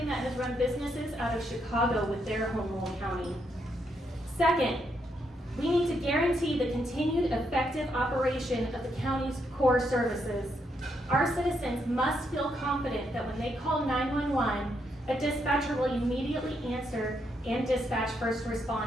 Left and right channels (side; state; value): both; normal; correlation 0.78